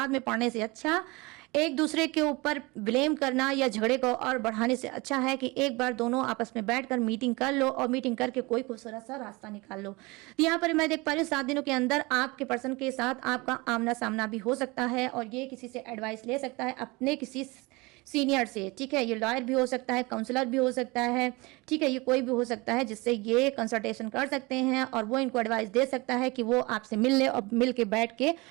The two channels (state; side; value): quieter; left; 24.5 dB